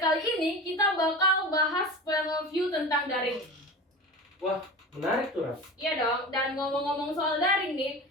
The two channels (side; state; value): both; normal; correlation 0.31